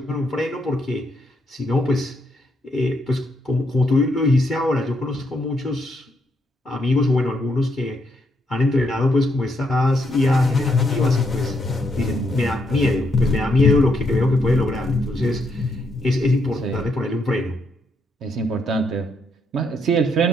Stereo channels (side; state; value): both; normal; correlation 0.76